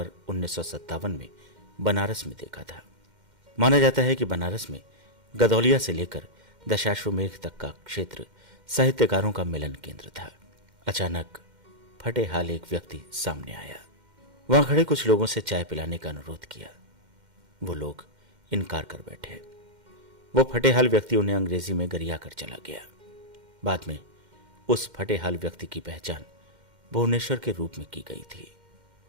1957 में बनारस में देखा था। माना जाता है कि बनारस में गदौलिया से लेकर दशाश्वमेध तक का क्षेत्र साहित्यकारों का मिलन केंद्र था। अचानक फटे हाल एक व्यक्ति सामने आया। वहां खड़े कुछ लोगों से चाय पिलाने का अनुरोध किया। वो लोग इनकार कर बैठे। वो फटे हाल व्यक्ति उन्हें अंग्रेजी में गरिया कर चला गया। बाद में उस फटे हाल व्यक्ति की पहचान भुवनेश्वर के रूप में की गई थी।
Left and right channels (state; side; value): late; left; 2.1 ms